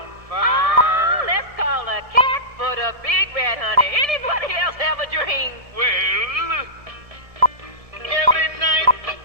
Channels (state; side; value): late; left; 1.7 ms